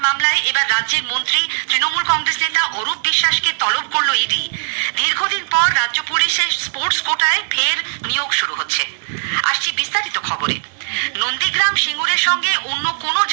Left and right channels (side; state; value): left; silent; 67 dB below the other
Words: মামলায় এবার রাজ্যের মন্ত্রী তৃণমূল কংগ্রেস নেতা অরূপ বিশ্বাসকে তলব করল ইডি। দীর্ঘদিন পর রাজ্য পুলিশের স্পোর্টস কোটায় ফের নিয়োগ শুরু হচ্ছে। আসছি বিস্তারিত খবরে। নন্দীগ্রাম সিঙ্গুরের সঙ্গে অন্য কোনো